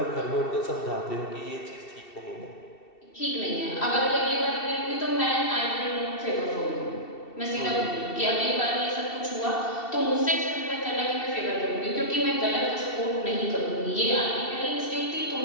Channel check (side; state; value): right; late; 2.7 ms